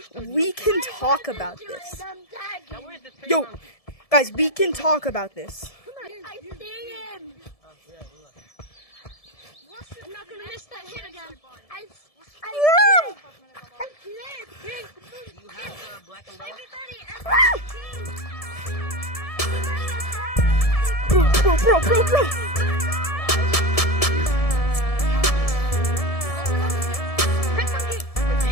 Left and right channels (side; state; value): right; late; 1.7 ms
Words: we can talk about this. Yo, guys, we can talk about this. I see him. I'm not gonna miss that hit again. I slid. You have the black umbrella? Bro.